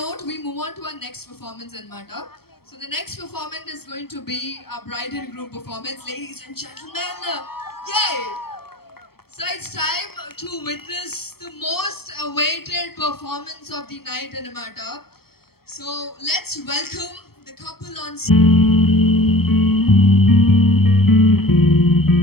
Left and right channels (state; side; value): late; right; 0.95 ms